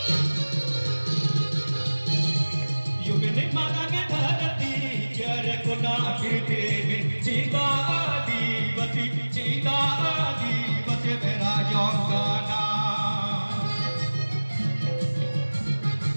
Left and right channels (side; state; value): both; inverted; correlation -1.00